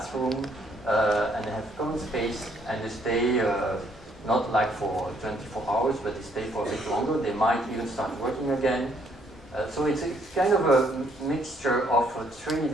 and they have common space. And they stay not like for 24 hours, but they stay for a bit longer. They might even start working again. So it's kind of a mixture of 3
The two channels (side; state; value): both; normal; correlation 0.68